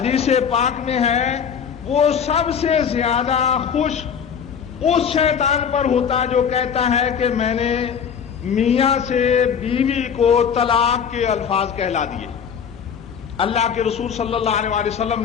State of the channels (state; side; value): quieter; right; 7.3 dB